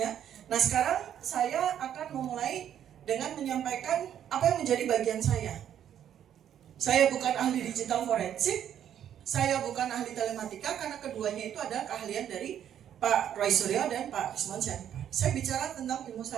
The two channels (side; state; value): left; quieter; 9.9 dB